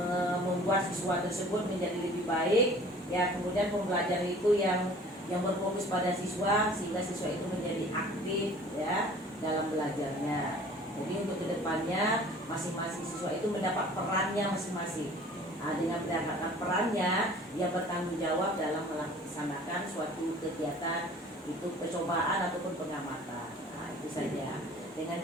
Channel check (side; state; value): both; normal; correlation 0.48